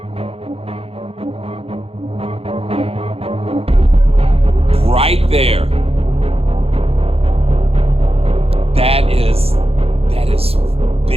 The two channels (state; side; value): late; left; 0.29 ms